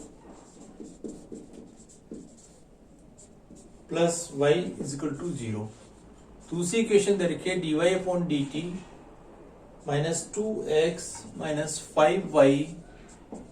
plus y equal to 0। दूसरी इक्वेशन दे रखी है dy upon dt minus 2x minus 5y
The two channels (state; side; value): identical; both; correlation 1.00